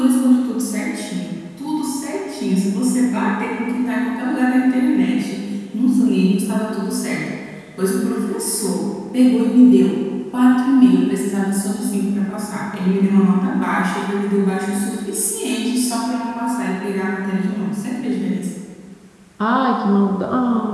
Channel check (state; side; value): identical; both; correlation 1.00